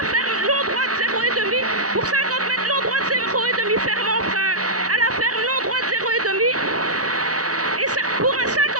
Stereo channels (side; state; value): left; late; 0.67 ms